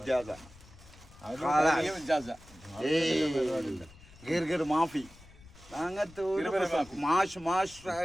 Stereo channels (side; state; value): left; noise; rumble, 22 dB below the sound